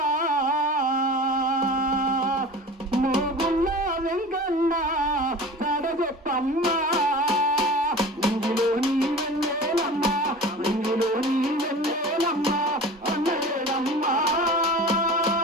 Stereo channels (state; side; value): normal; both; correlation 0.37